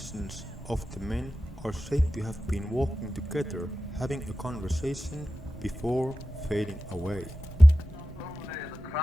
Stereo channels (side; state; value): both; normal; correlation 0.93